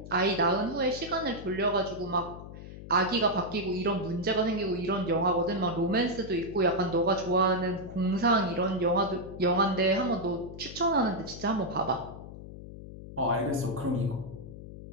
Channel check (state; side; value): noise; left; hum, 13 dB below the sound